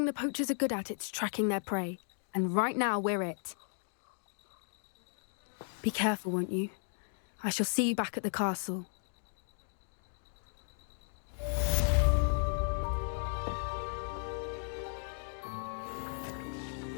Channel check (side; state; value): right; silent; digital silence